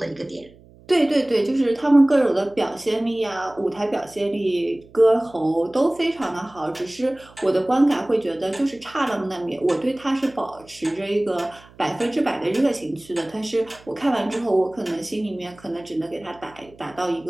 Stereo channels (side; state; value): right; noise; hum, 25 dB below the sound